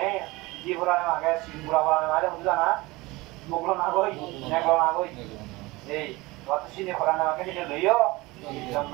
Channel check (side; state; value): left; quieter; 21.8 dB